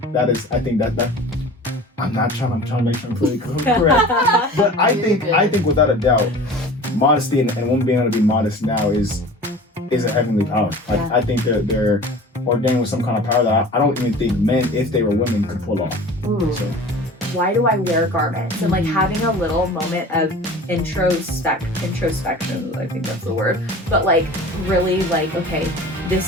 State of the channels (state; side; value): normal; both; correlation 0.40